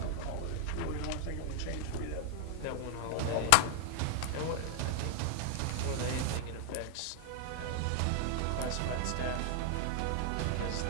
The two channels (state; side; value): different; both; correlation 0.00